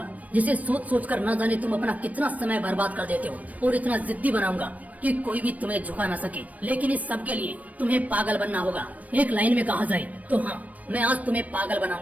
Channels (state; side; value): late; left; 0.071 ms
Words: जिसे सोच सोच कर न जाने तुम अपना कितना समय बर्बाद कर देते हो, और इतना जिद्दी बनाऊंगा कि कोई भी तुम्हें झुका न सके। लेकिन इस सब के लिए तुम्हें पागल बनना होगा। एक लाइन में कहा जाए तो हाँ, मैं आज तुम्हें पागल